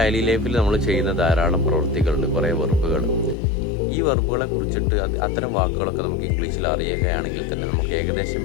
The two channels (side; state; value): right; drops out; at 3.4 s